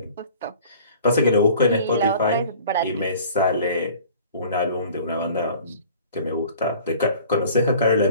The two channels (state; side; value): inverted; both; correlation -0.48